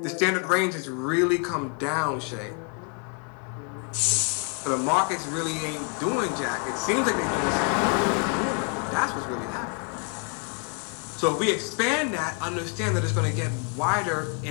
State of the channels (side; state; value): right; quieter; 39.1 dB